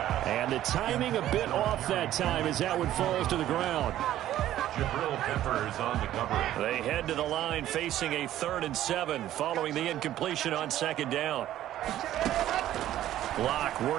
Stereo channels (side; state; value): left; quieter; 12.9 dB